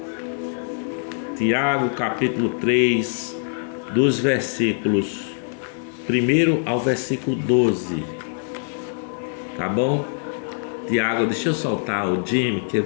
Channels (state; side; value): silent; right; digital silence